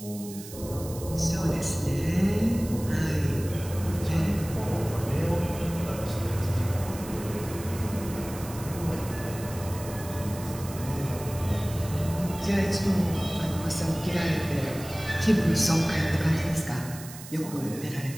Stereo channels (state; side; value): noise; right; hiss, 14 dB below the sound